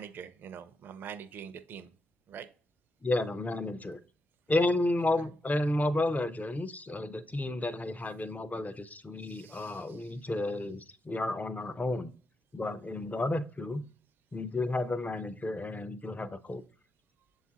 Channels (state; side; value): normal; both; correlation 0.84